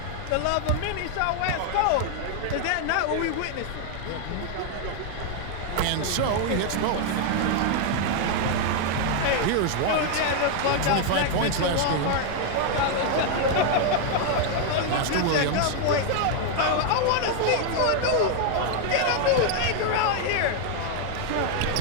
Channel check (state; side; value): different; both; correlation 0.00